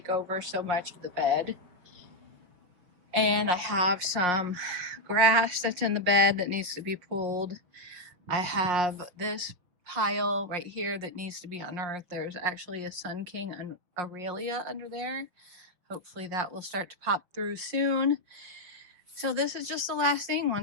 over so much of the bed. And I have some grass that's in the bed that needs to be pulled. I have this pile right here that needs to be unearthed. There's actually a Sun King and Aurelia under there. Hopefully that will start to pop through soon. So this is just the last thing.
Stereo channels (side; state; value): left; late; 5.6 ms